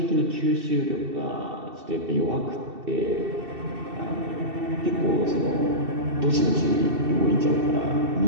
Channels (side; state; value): left; late; 2.7 ms